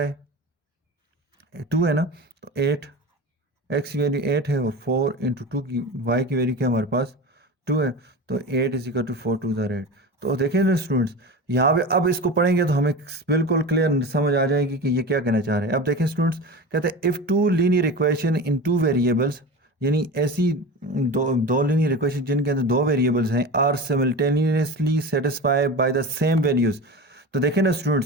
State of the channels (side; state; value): both; normal; correlation 0.29